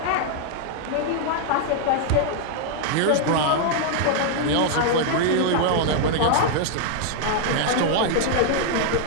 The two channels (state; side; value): different; both; correlation 0.00